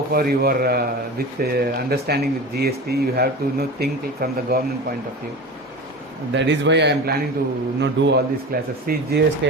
far you are with understanding with GST. You have to think from the government point of view. That is why I am planning to do all these classes. See,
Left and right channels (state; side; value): normal; both; correlation 0.31